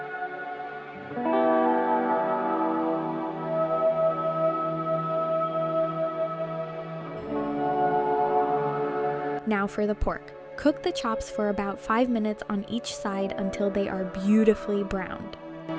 Now for the pork. Cook the chops for about 5 minutes on each side until they are beautifully browned.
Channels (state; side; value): identical; both; correlation 1.00